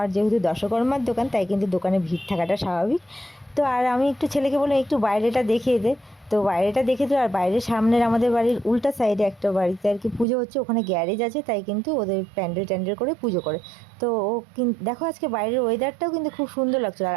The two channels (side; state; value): left; drops out; at 10.2 s